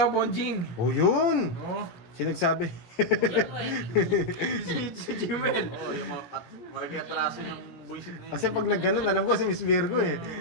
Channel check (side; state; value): right; late; 17 ms